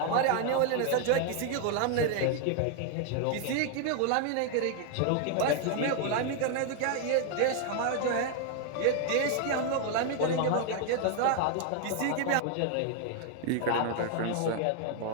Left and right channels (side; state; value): both; different; correlation 0.00